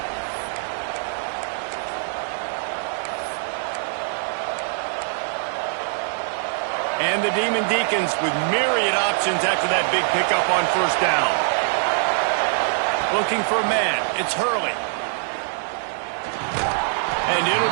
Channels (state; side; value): silent; left; 61 dB below the other